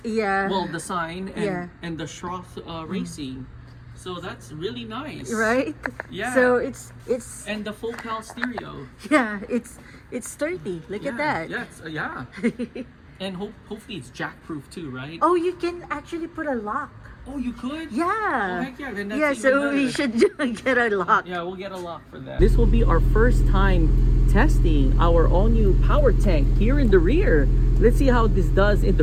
Yeah. Well, the sign and, Yeah. and the Schroth Racing. So that's really nice. Right? Yeah. So it's And the full cal stereo. yeah, it's sturdy. Look at that. Yes, yeah. And hopefully it's jack-proof too, right? Oh, you can actually put a lock. Oh, you could? Yeah. Oh, heck yeah, then that's Yeah, even so we better. should get a lock. Yeah, we'll get a lock for that. This will be our first time testing our all-new power tank here in the rear. Let's see how this does in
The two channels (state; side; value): identical; both; correlation 1.00